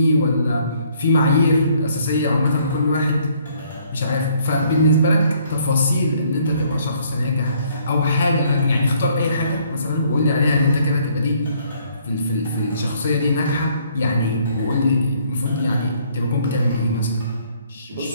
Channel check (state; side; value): inverted; both; correlation -0.64